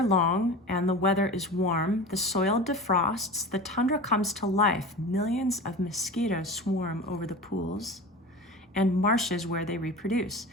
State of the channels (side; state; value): both; normal; correlation 0.33